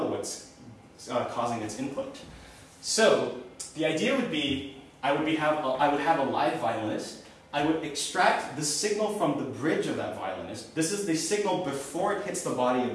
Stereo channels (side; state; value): both; identical; correlation 1.00